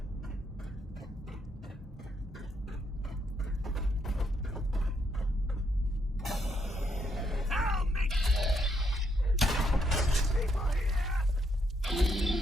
Help me! People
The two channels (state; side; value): normal; both; correlation 0.75